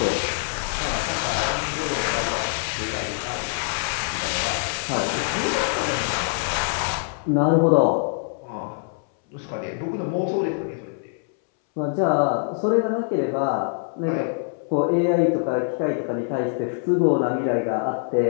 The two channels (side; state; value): right; silent; 63 dB below the other